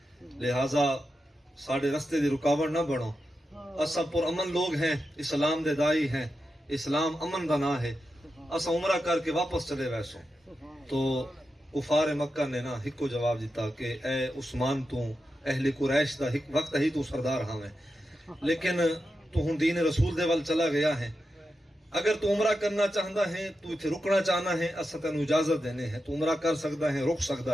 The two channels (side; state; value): both; normal; correlation 0.89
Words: لہٰذا ساڑھے رستے دی رکاوٹ نہ بنو، اساں پر امن لوگ ہیں، اسلام دے دائی ہیں، اسلام امن دا نام ہے، اساں عمرہ کر کے واپس چلے ویسوں۔ تو کفار مکہ نے نا ہکو جواب دیتا کہ اے عثمان تو اہل قریش دا وقت ہی تو سردار ہاں میں، لیکن تو ہن دین رسول دے وال چلا گیا ہے، اگر تو عمرہ کرنا چاہتا ہے تو اتنے رکنا چاہنا ہے اساں تینوں اجازت دینے ہے، تو عمرہ کر سکتا ہے، رک